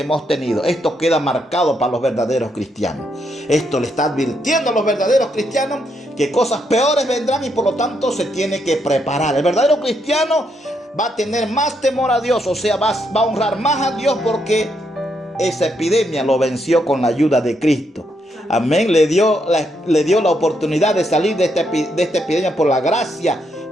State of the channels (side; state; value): both; normal; correlation 0.77